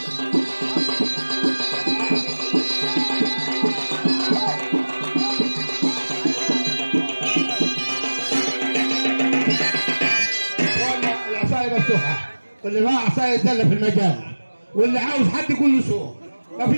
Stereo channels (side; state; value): both; inverted; correlation -1.00